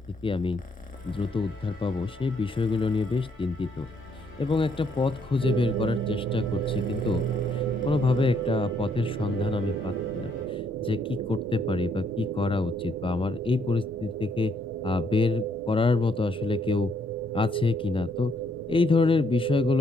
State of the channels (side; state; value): both; normal; correlation 0.70